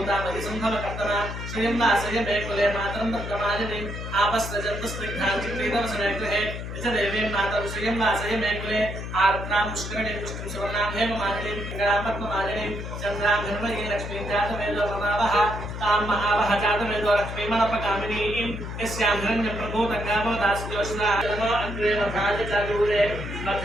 श्रियं वासय मे कुले मातरं वर्तमालिनीम् आपस्रजन्तस्निग्धां चित्रीतवसने गृहे निजदेवीं मातरं श्रियं वासय मे कुले आर्द्रां पुष्करणीं पुष्टिं सुवर्णां हेममालिनीं पिङ्गळां पद्ममालिनीं चन्द्रां हिरण्मयीं लक्ष्मीं जातवेदो रमावः तां महावः जातवेदो लक्ष्मीमनपगामिनीं यस्यां हिरण्यं प्रभूतङ्गावो दास्योष्णा नमो अग्रे वधाय च दूरे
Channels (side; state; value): left; noise; hum, 7 dB below the sound